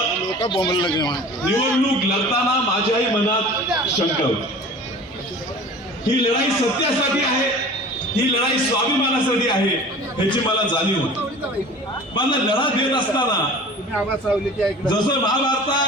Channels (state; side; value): normal; both; correlation 0.41